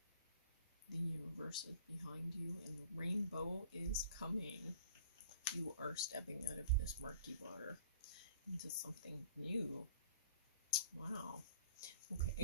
The universe is behind you, and the rainbow is coming. You are stepping out of this murky water into something new. Wow.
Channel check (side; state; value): both; inverted; correlation -0.49